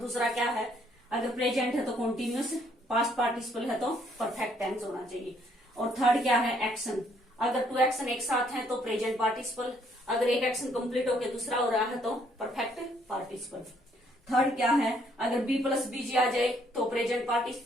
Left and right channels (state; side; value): normal; both; correlation 0.67